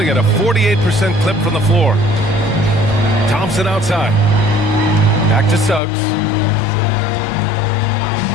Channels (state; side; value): drops out; right; at 5.8 s